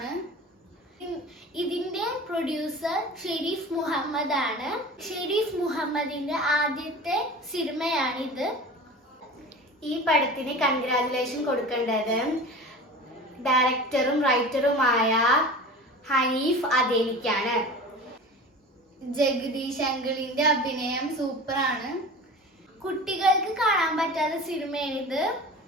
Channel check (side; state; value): both; normal; correlation 0.36